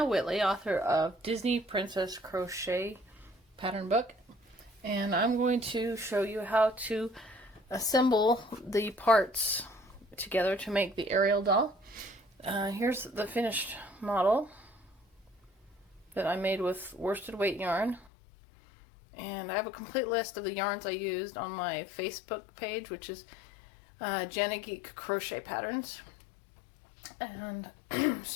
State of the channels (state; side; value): drops out; right; at 18.1 s